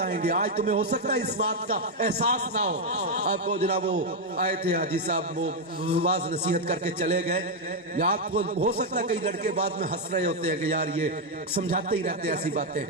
گے۔ آج تمہیں ہو سکتا ہے اس بات کا احساس نہ ہو۔ آپ کو جناب وہ آئے تھے حاجی صاحب، وہ واز نصیحت کر کے چلے گئے، یا آپ کو ہو سکتا ہے کئی لڑکے بعد میں ہنس رہے ہوتے ہیں کہ یار یہ سمجھاتے ہی رہتے ہیں ایسی باتیں۔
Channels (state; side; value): normal; both; correlation 0.02